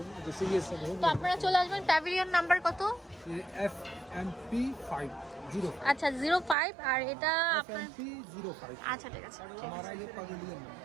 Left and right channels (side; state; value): left; drops out; at 6.6 s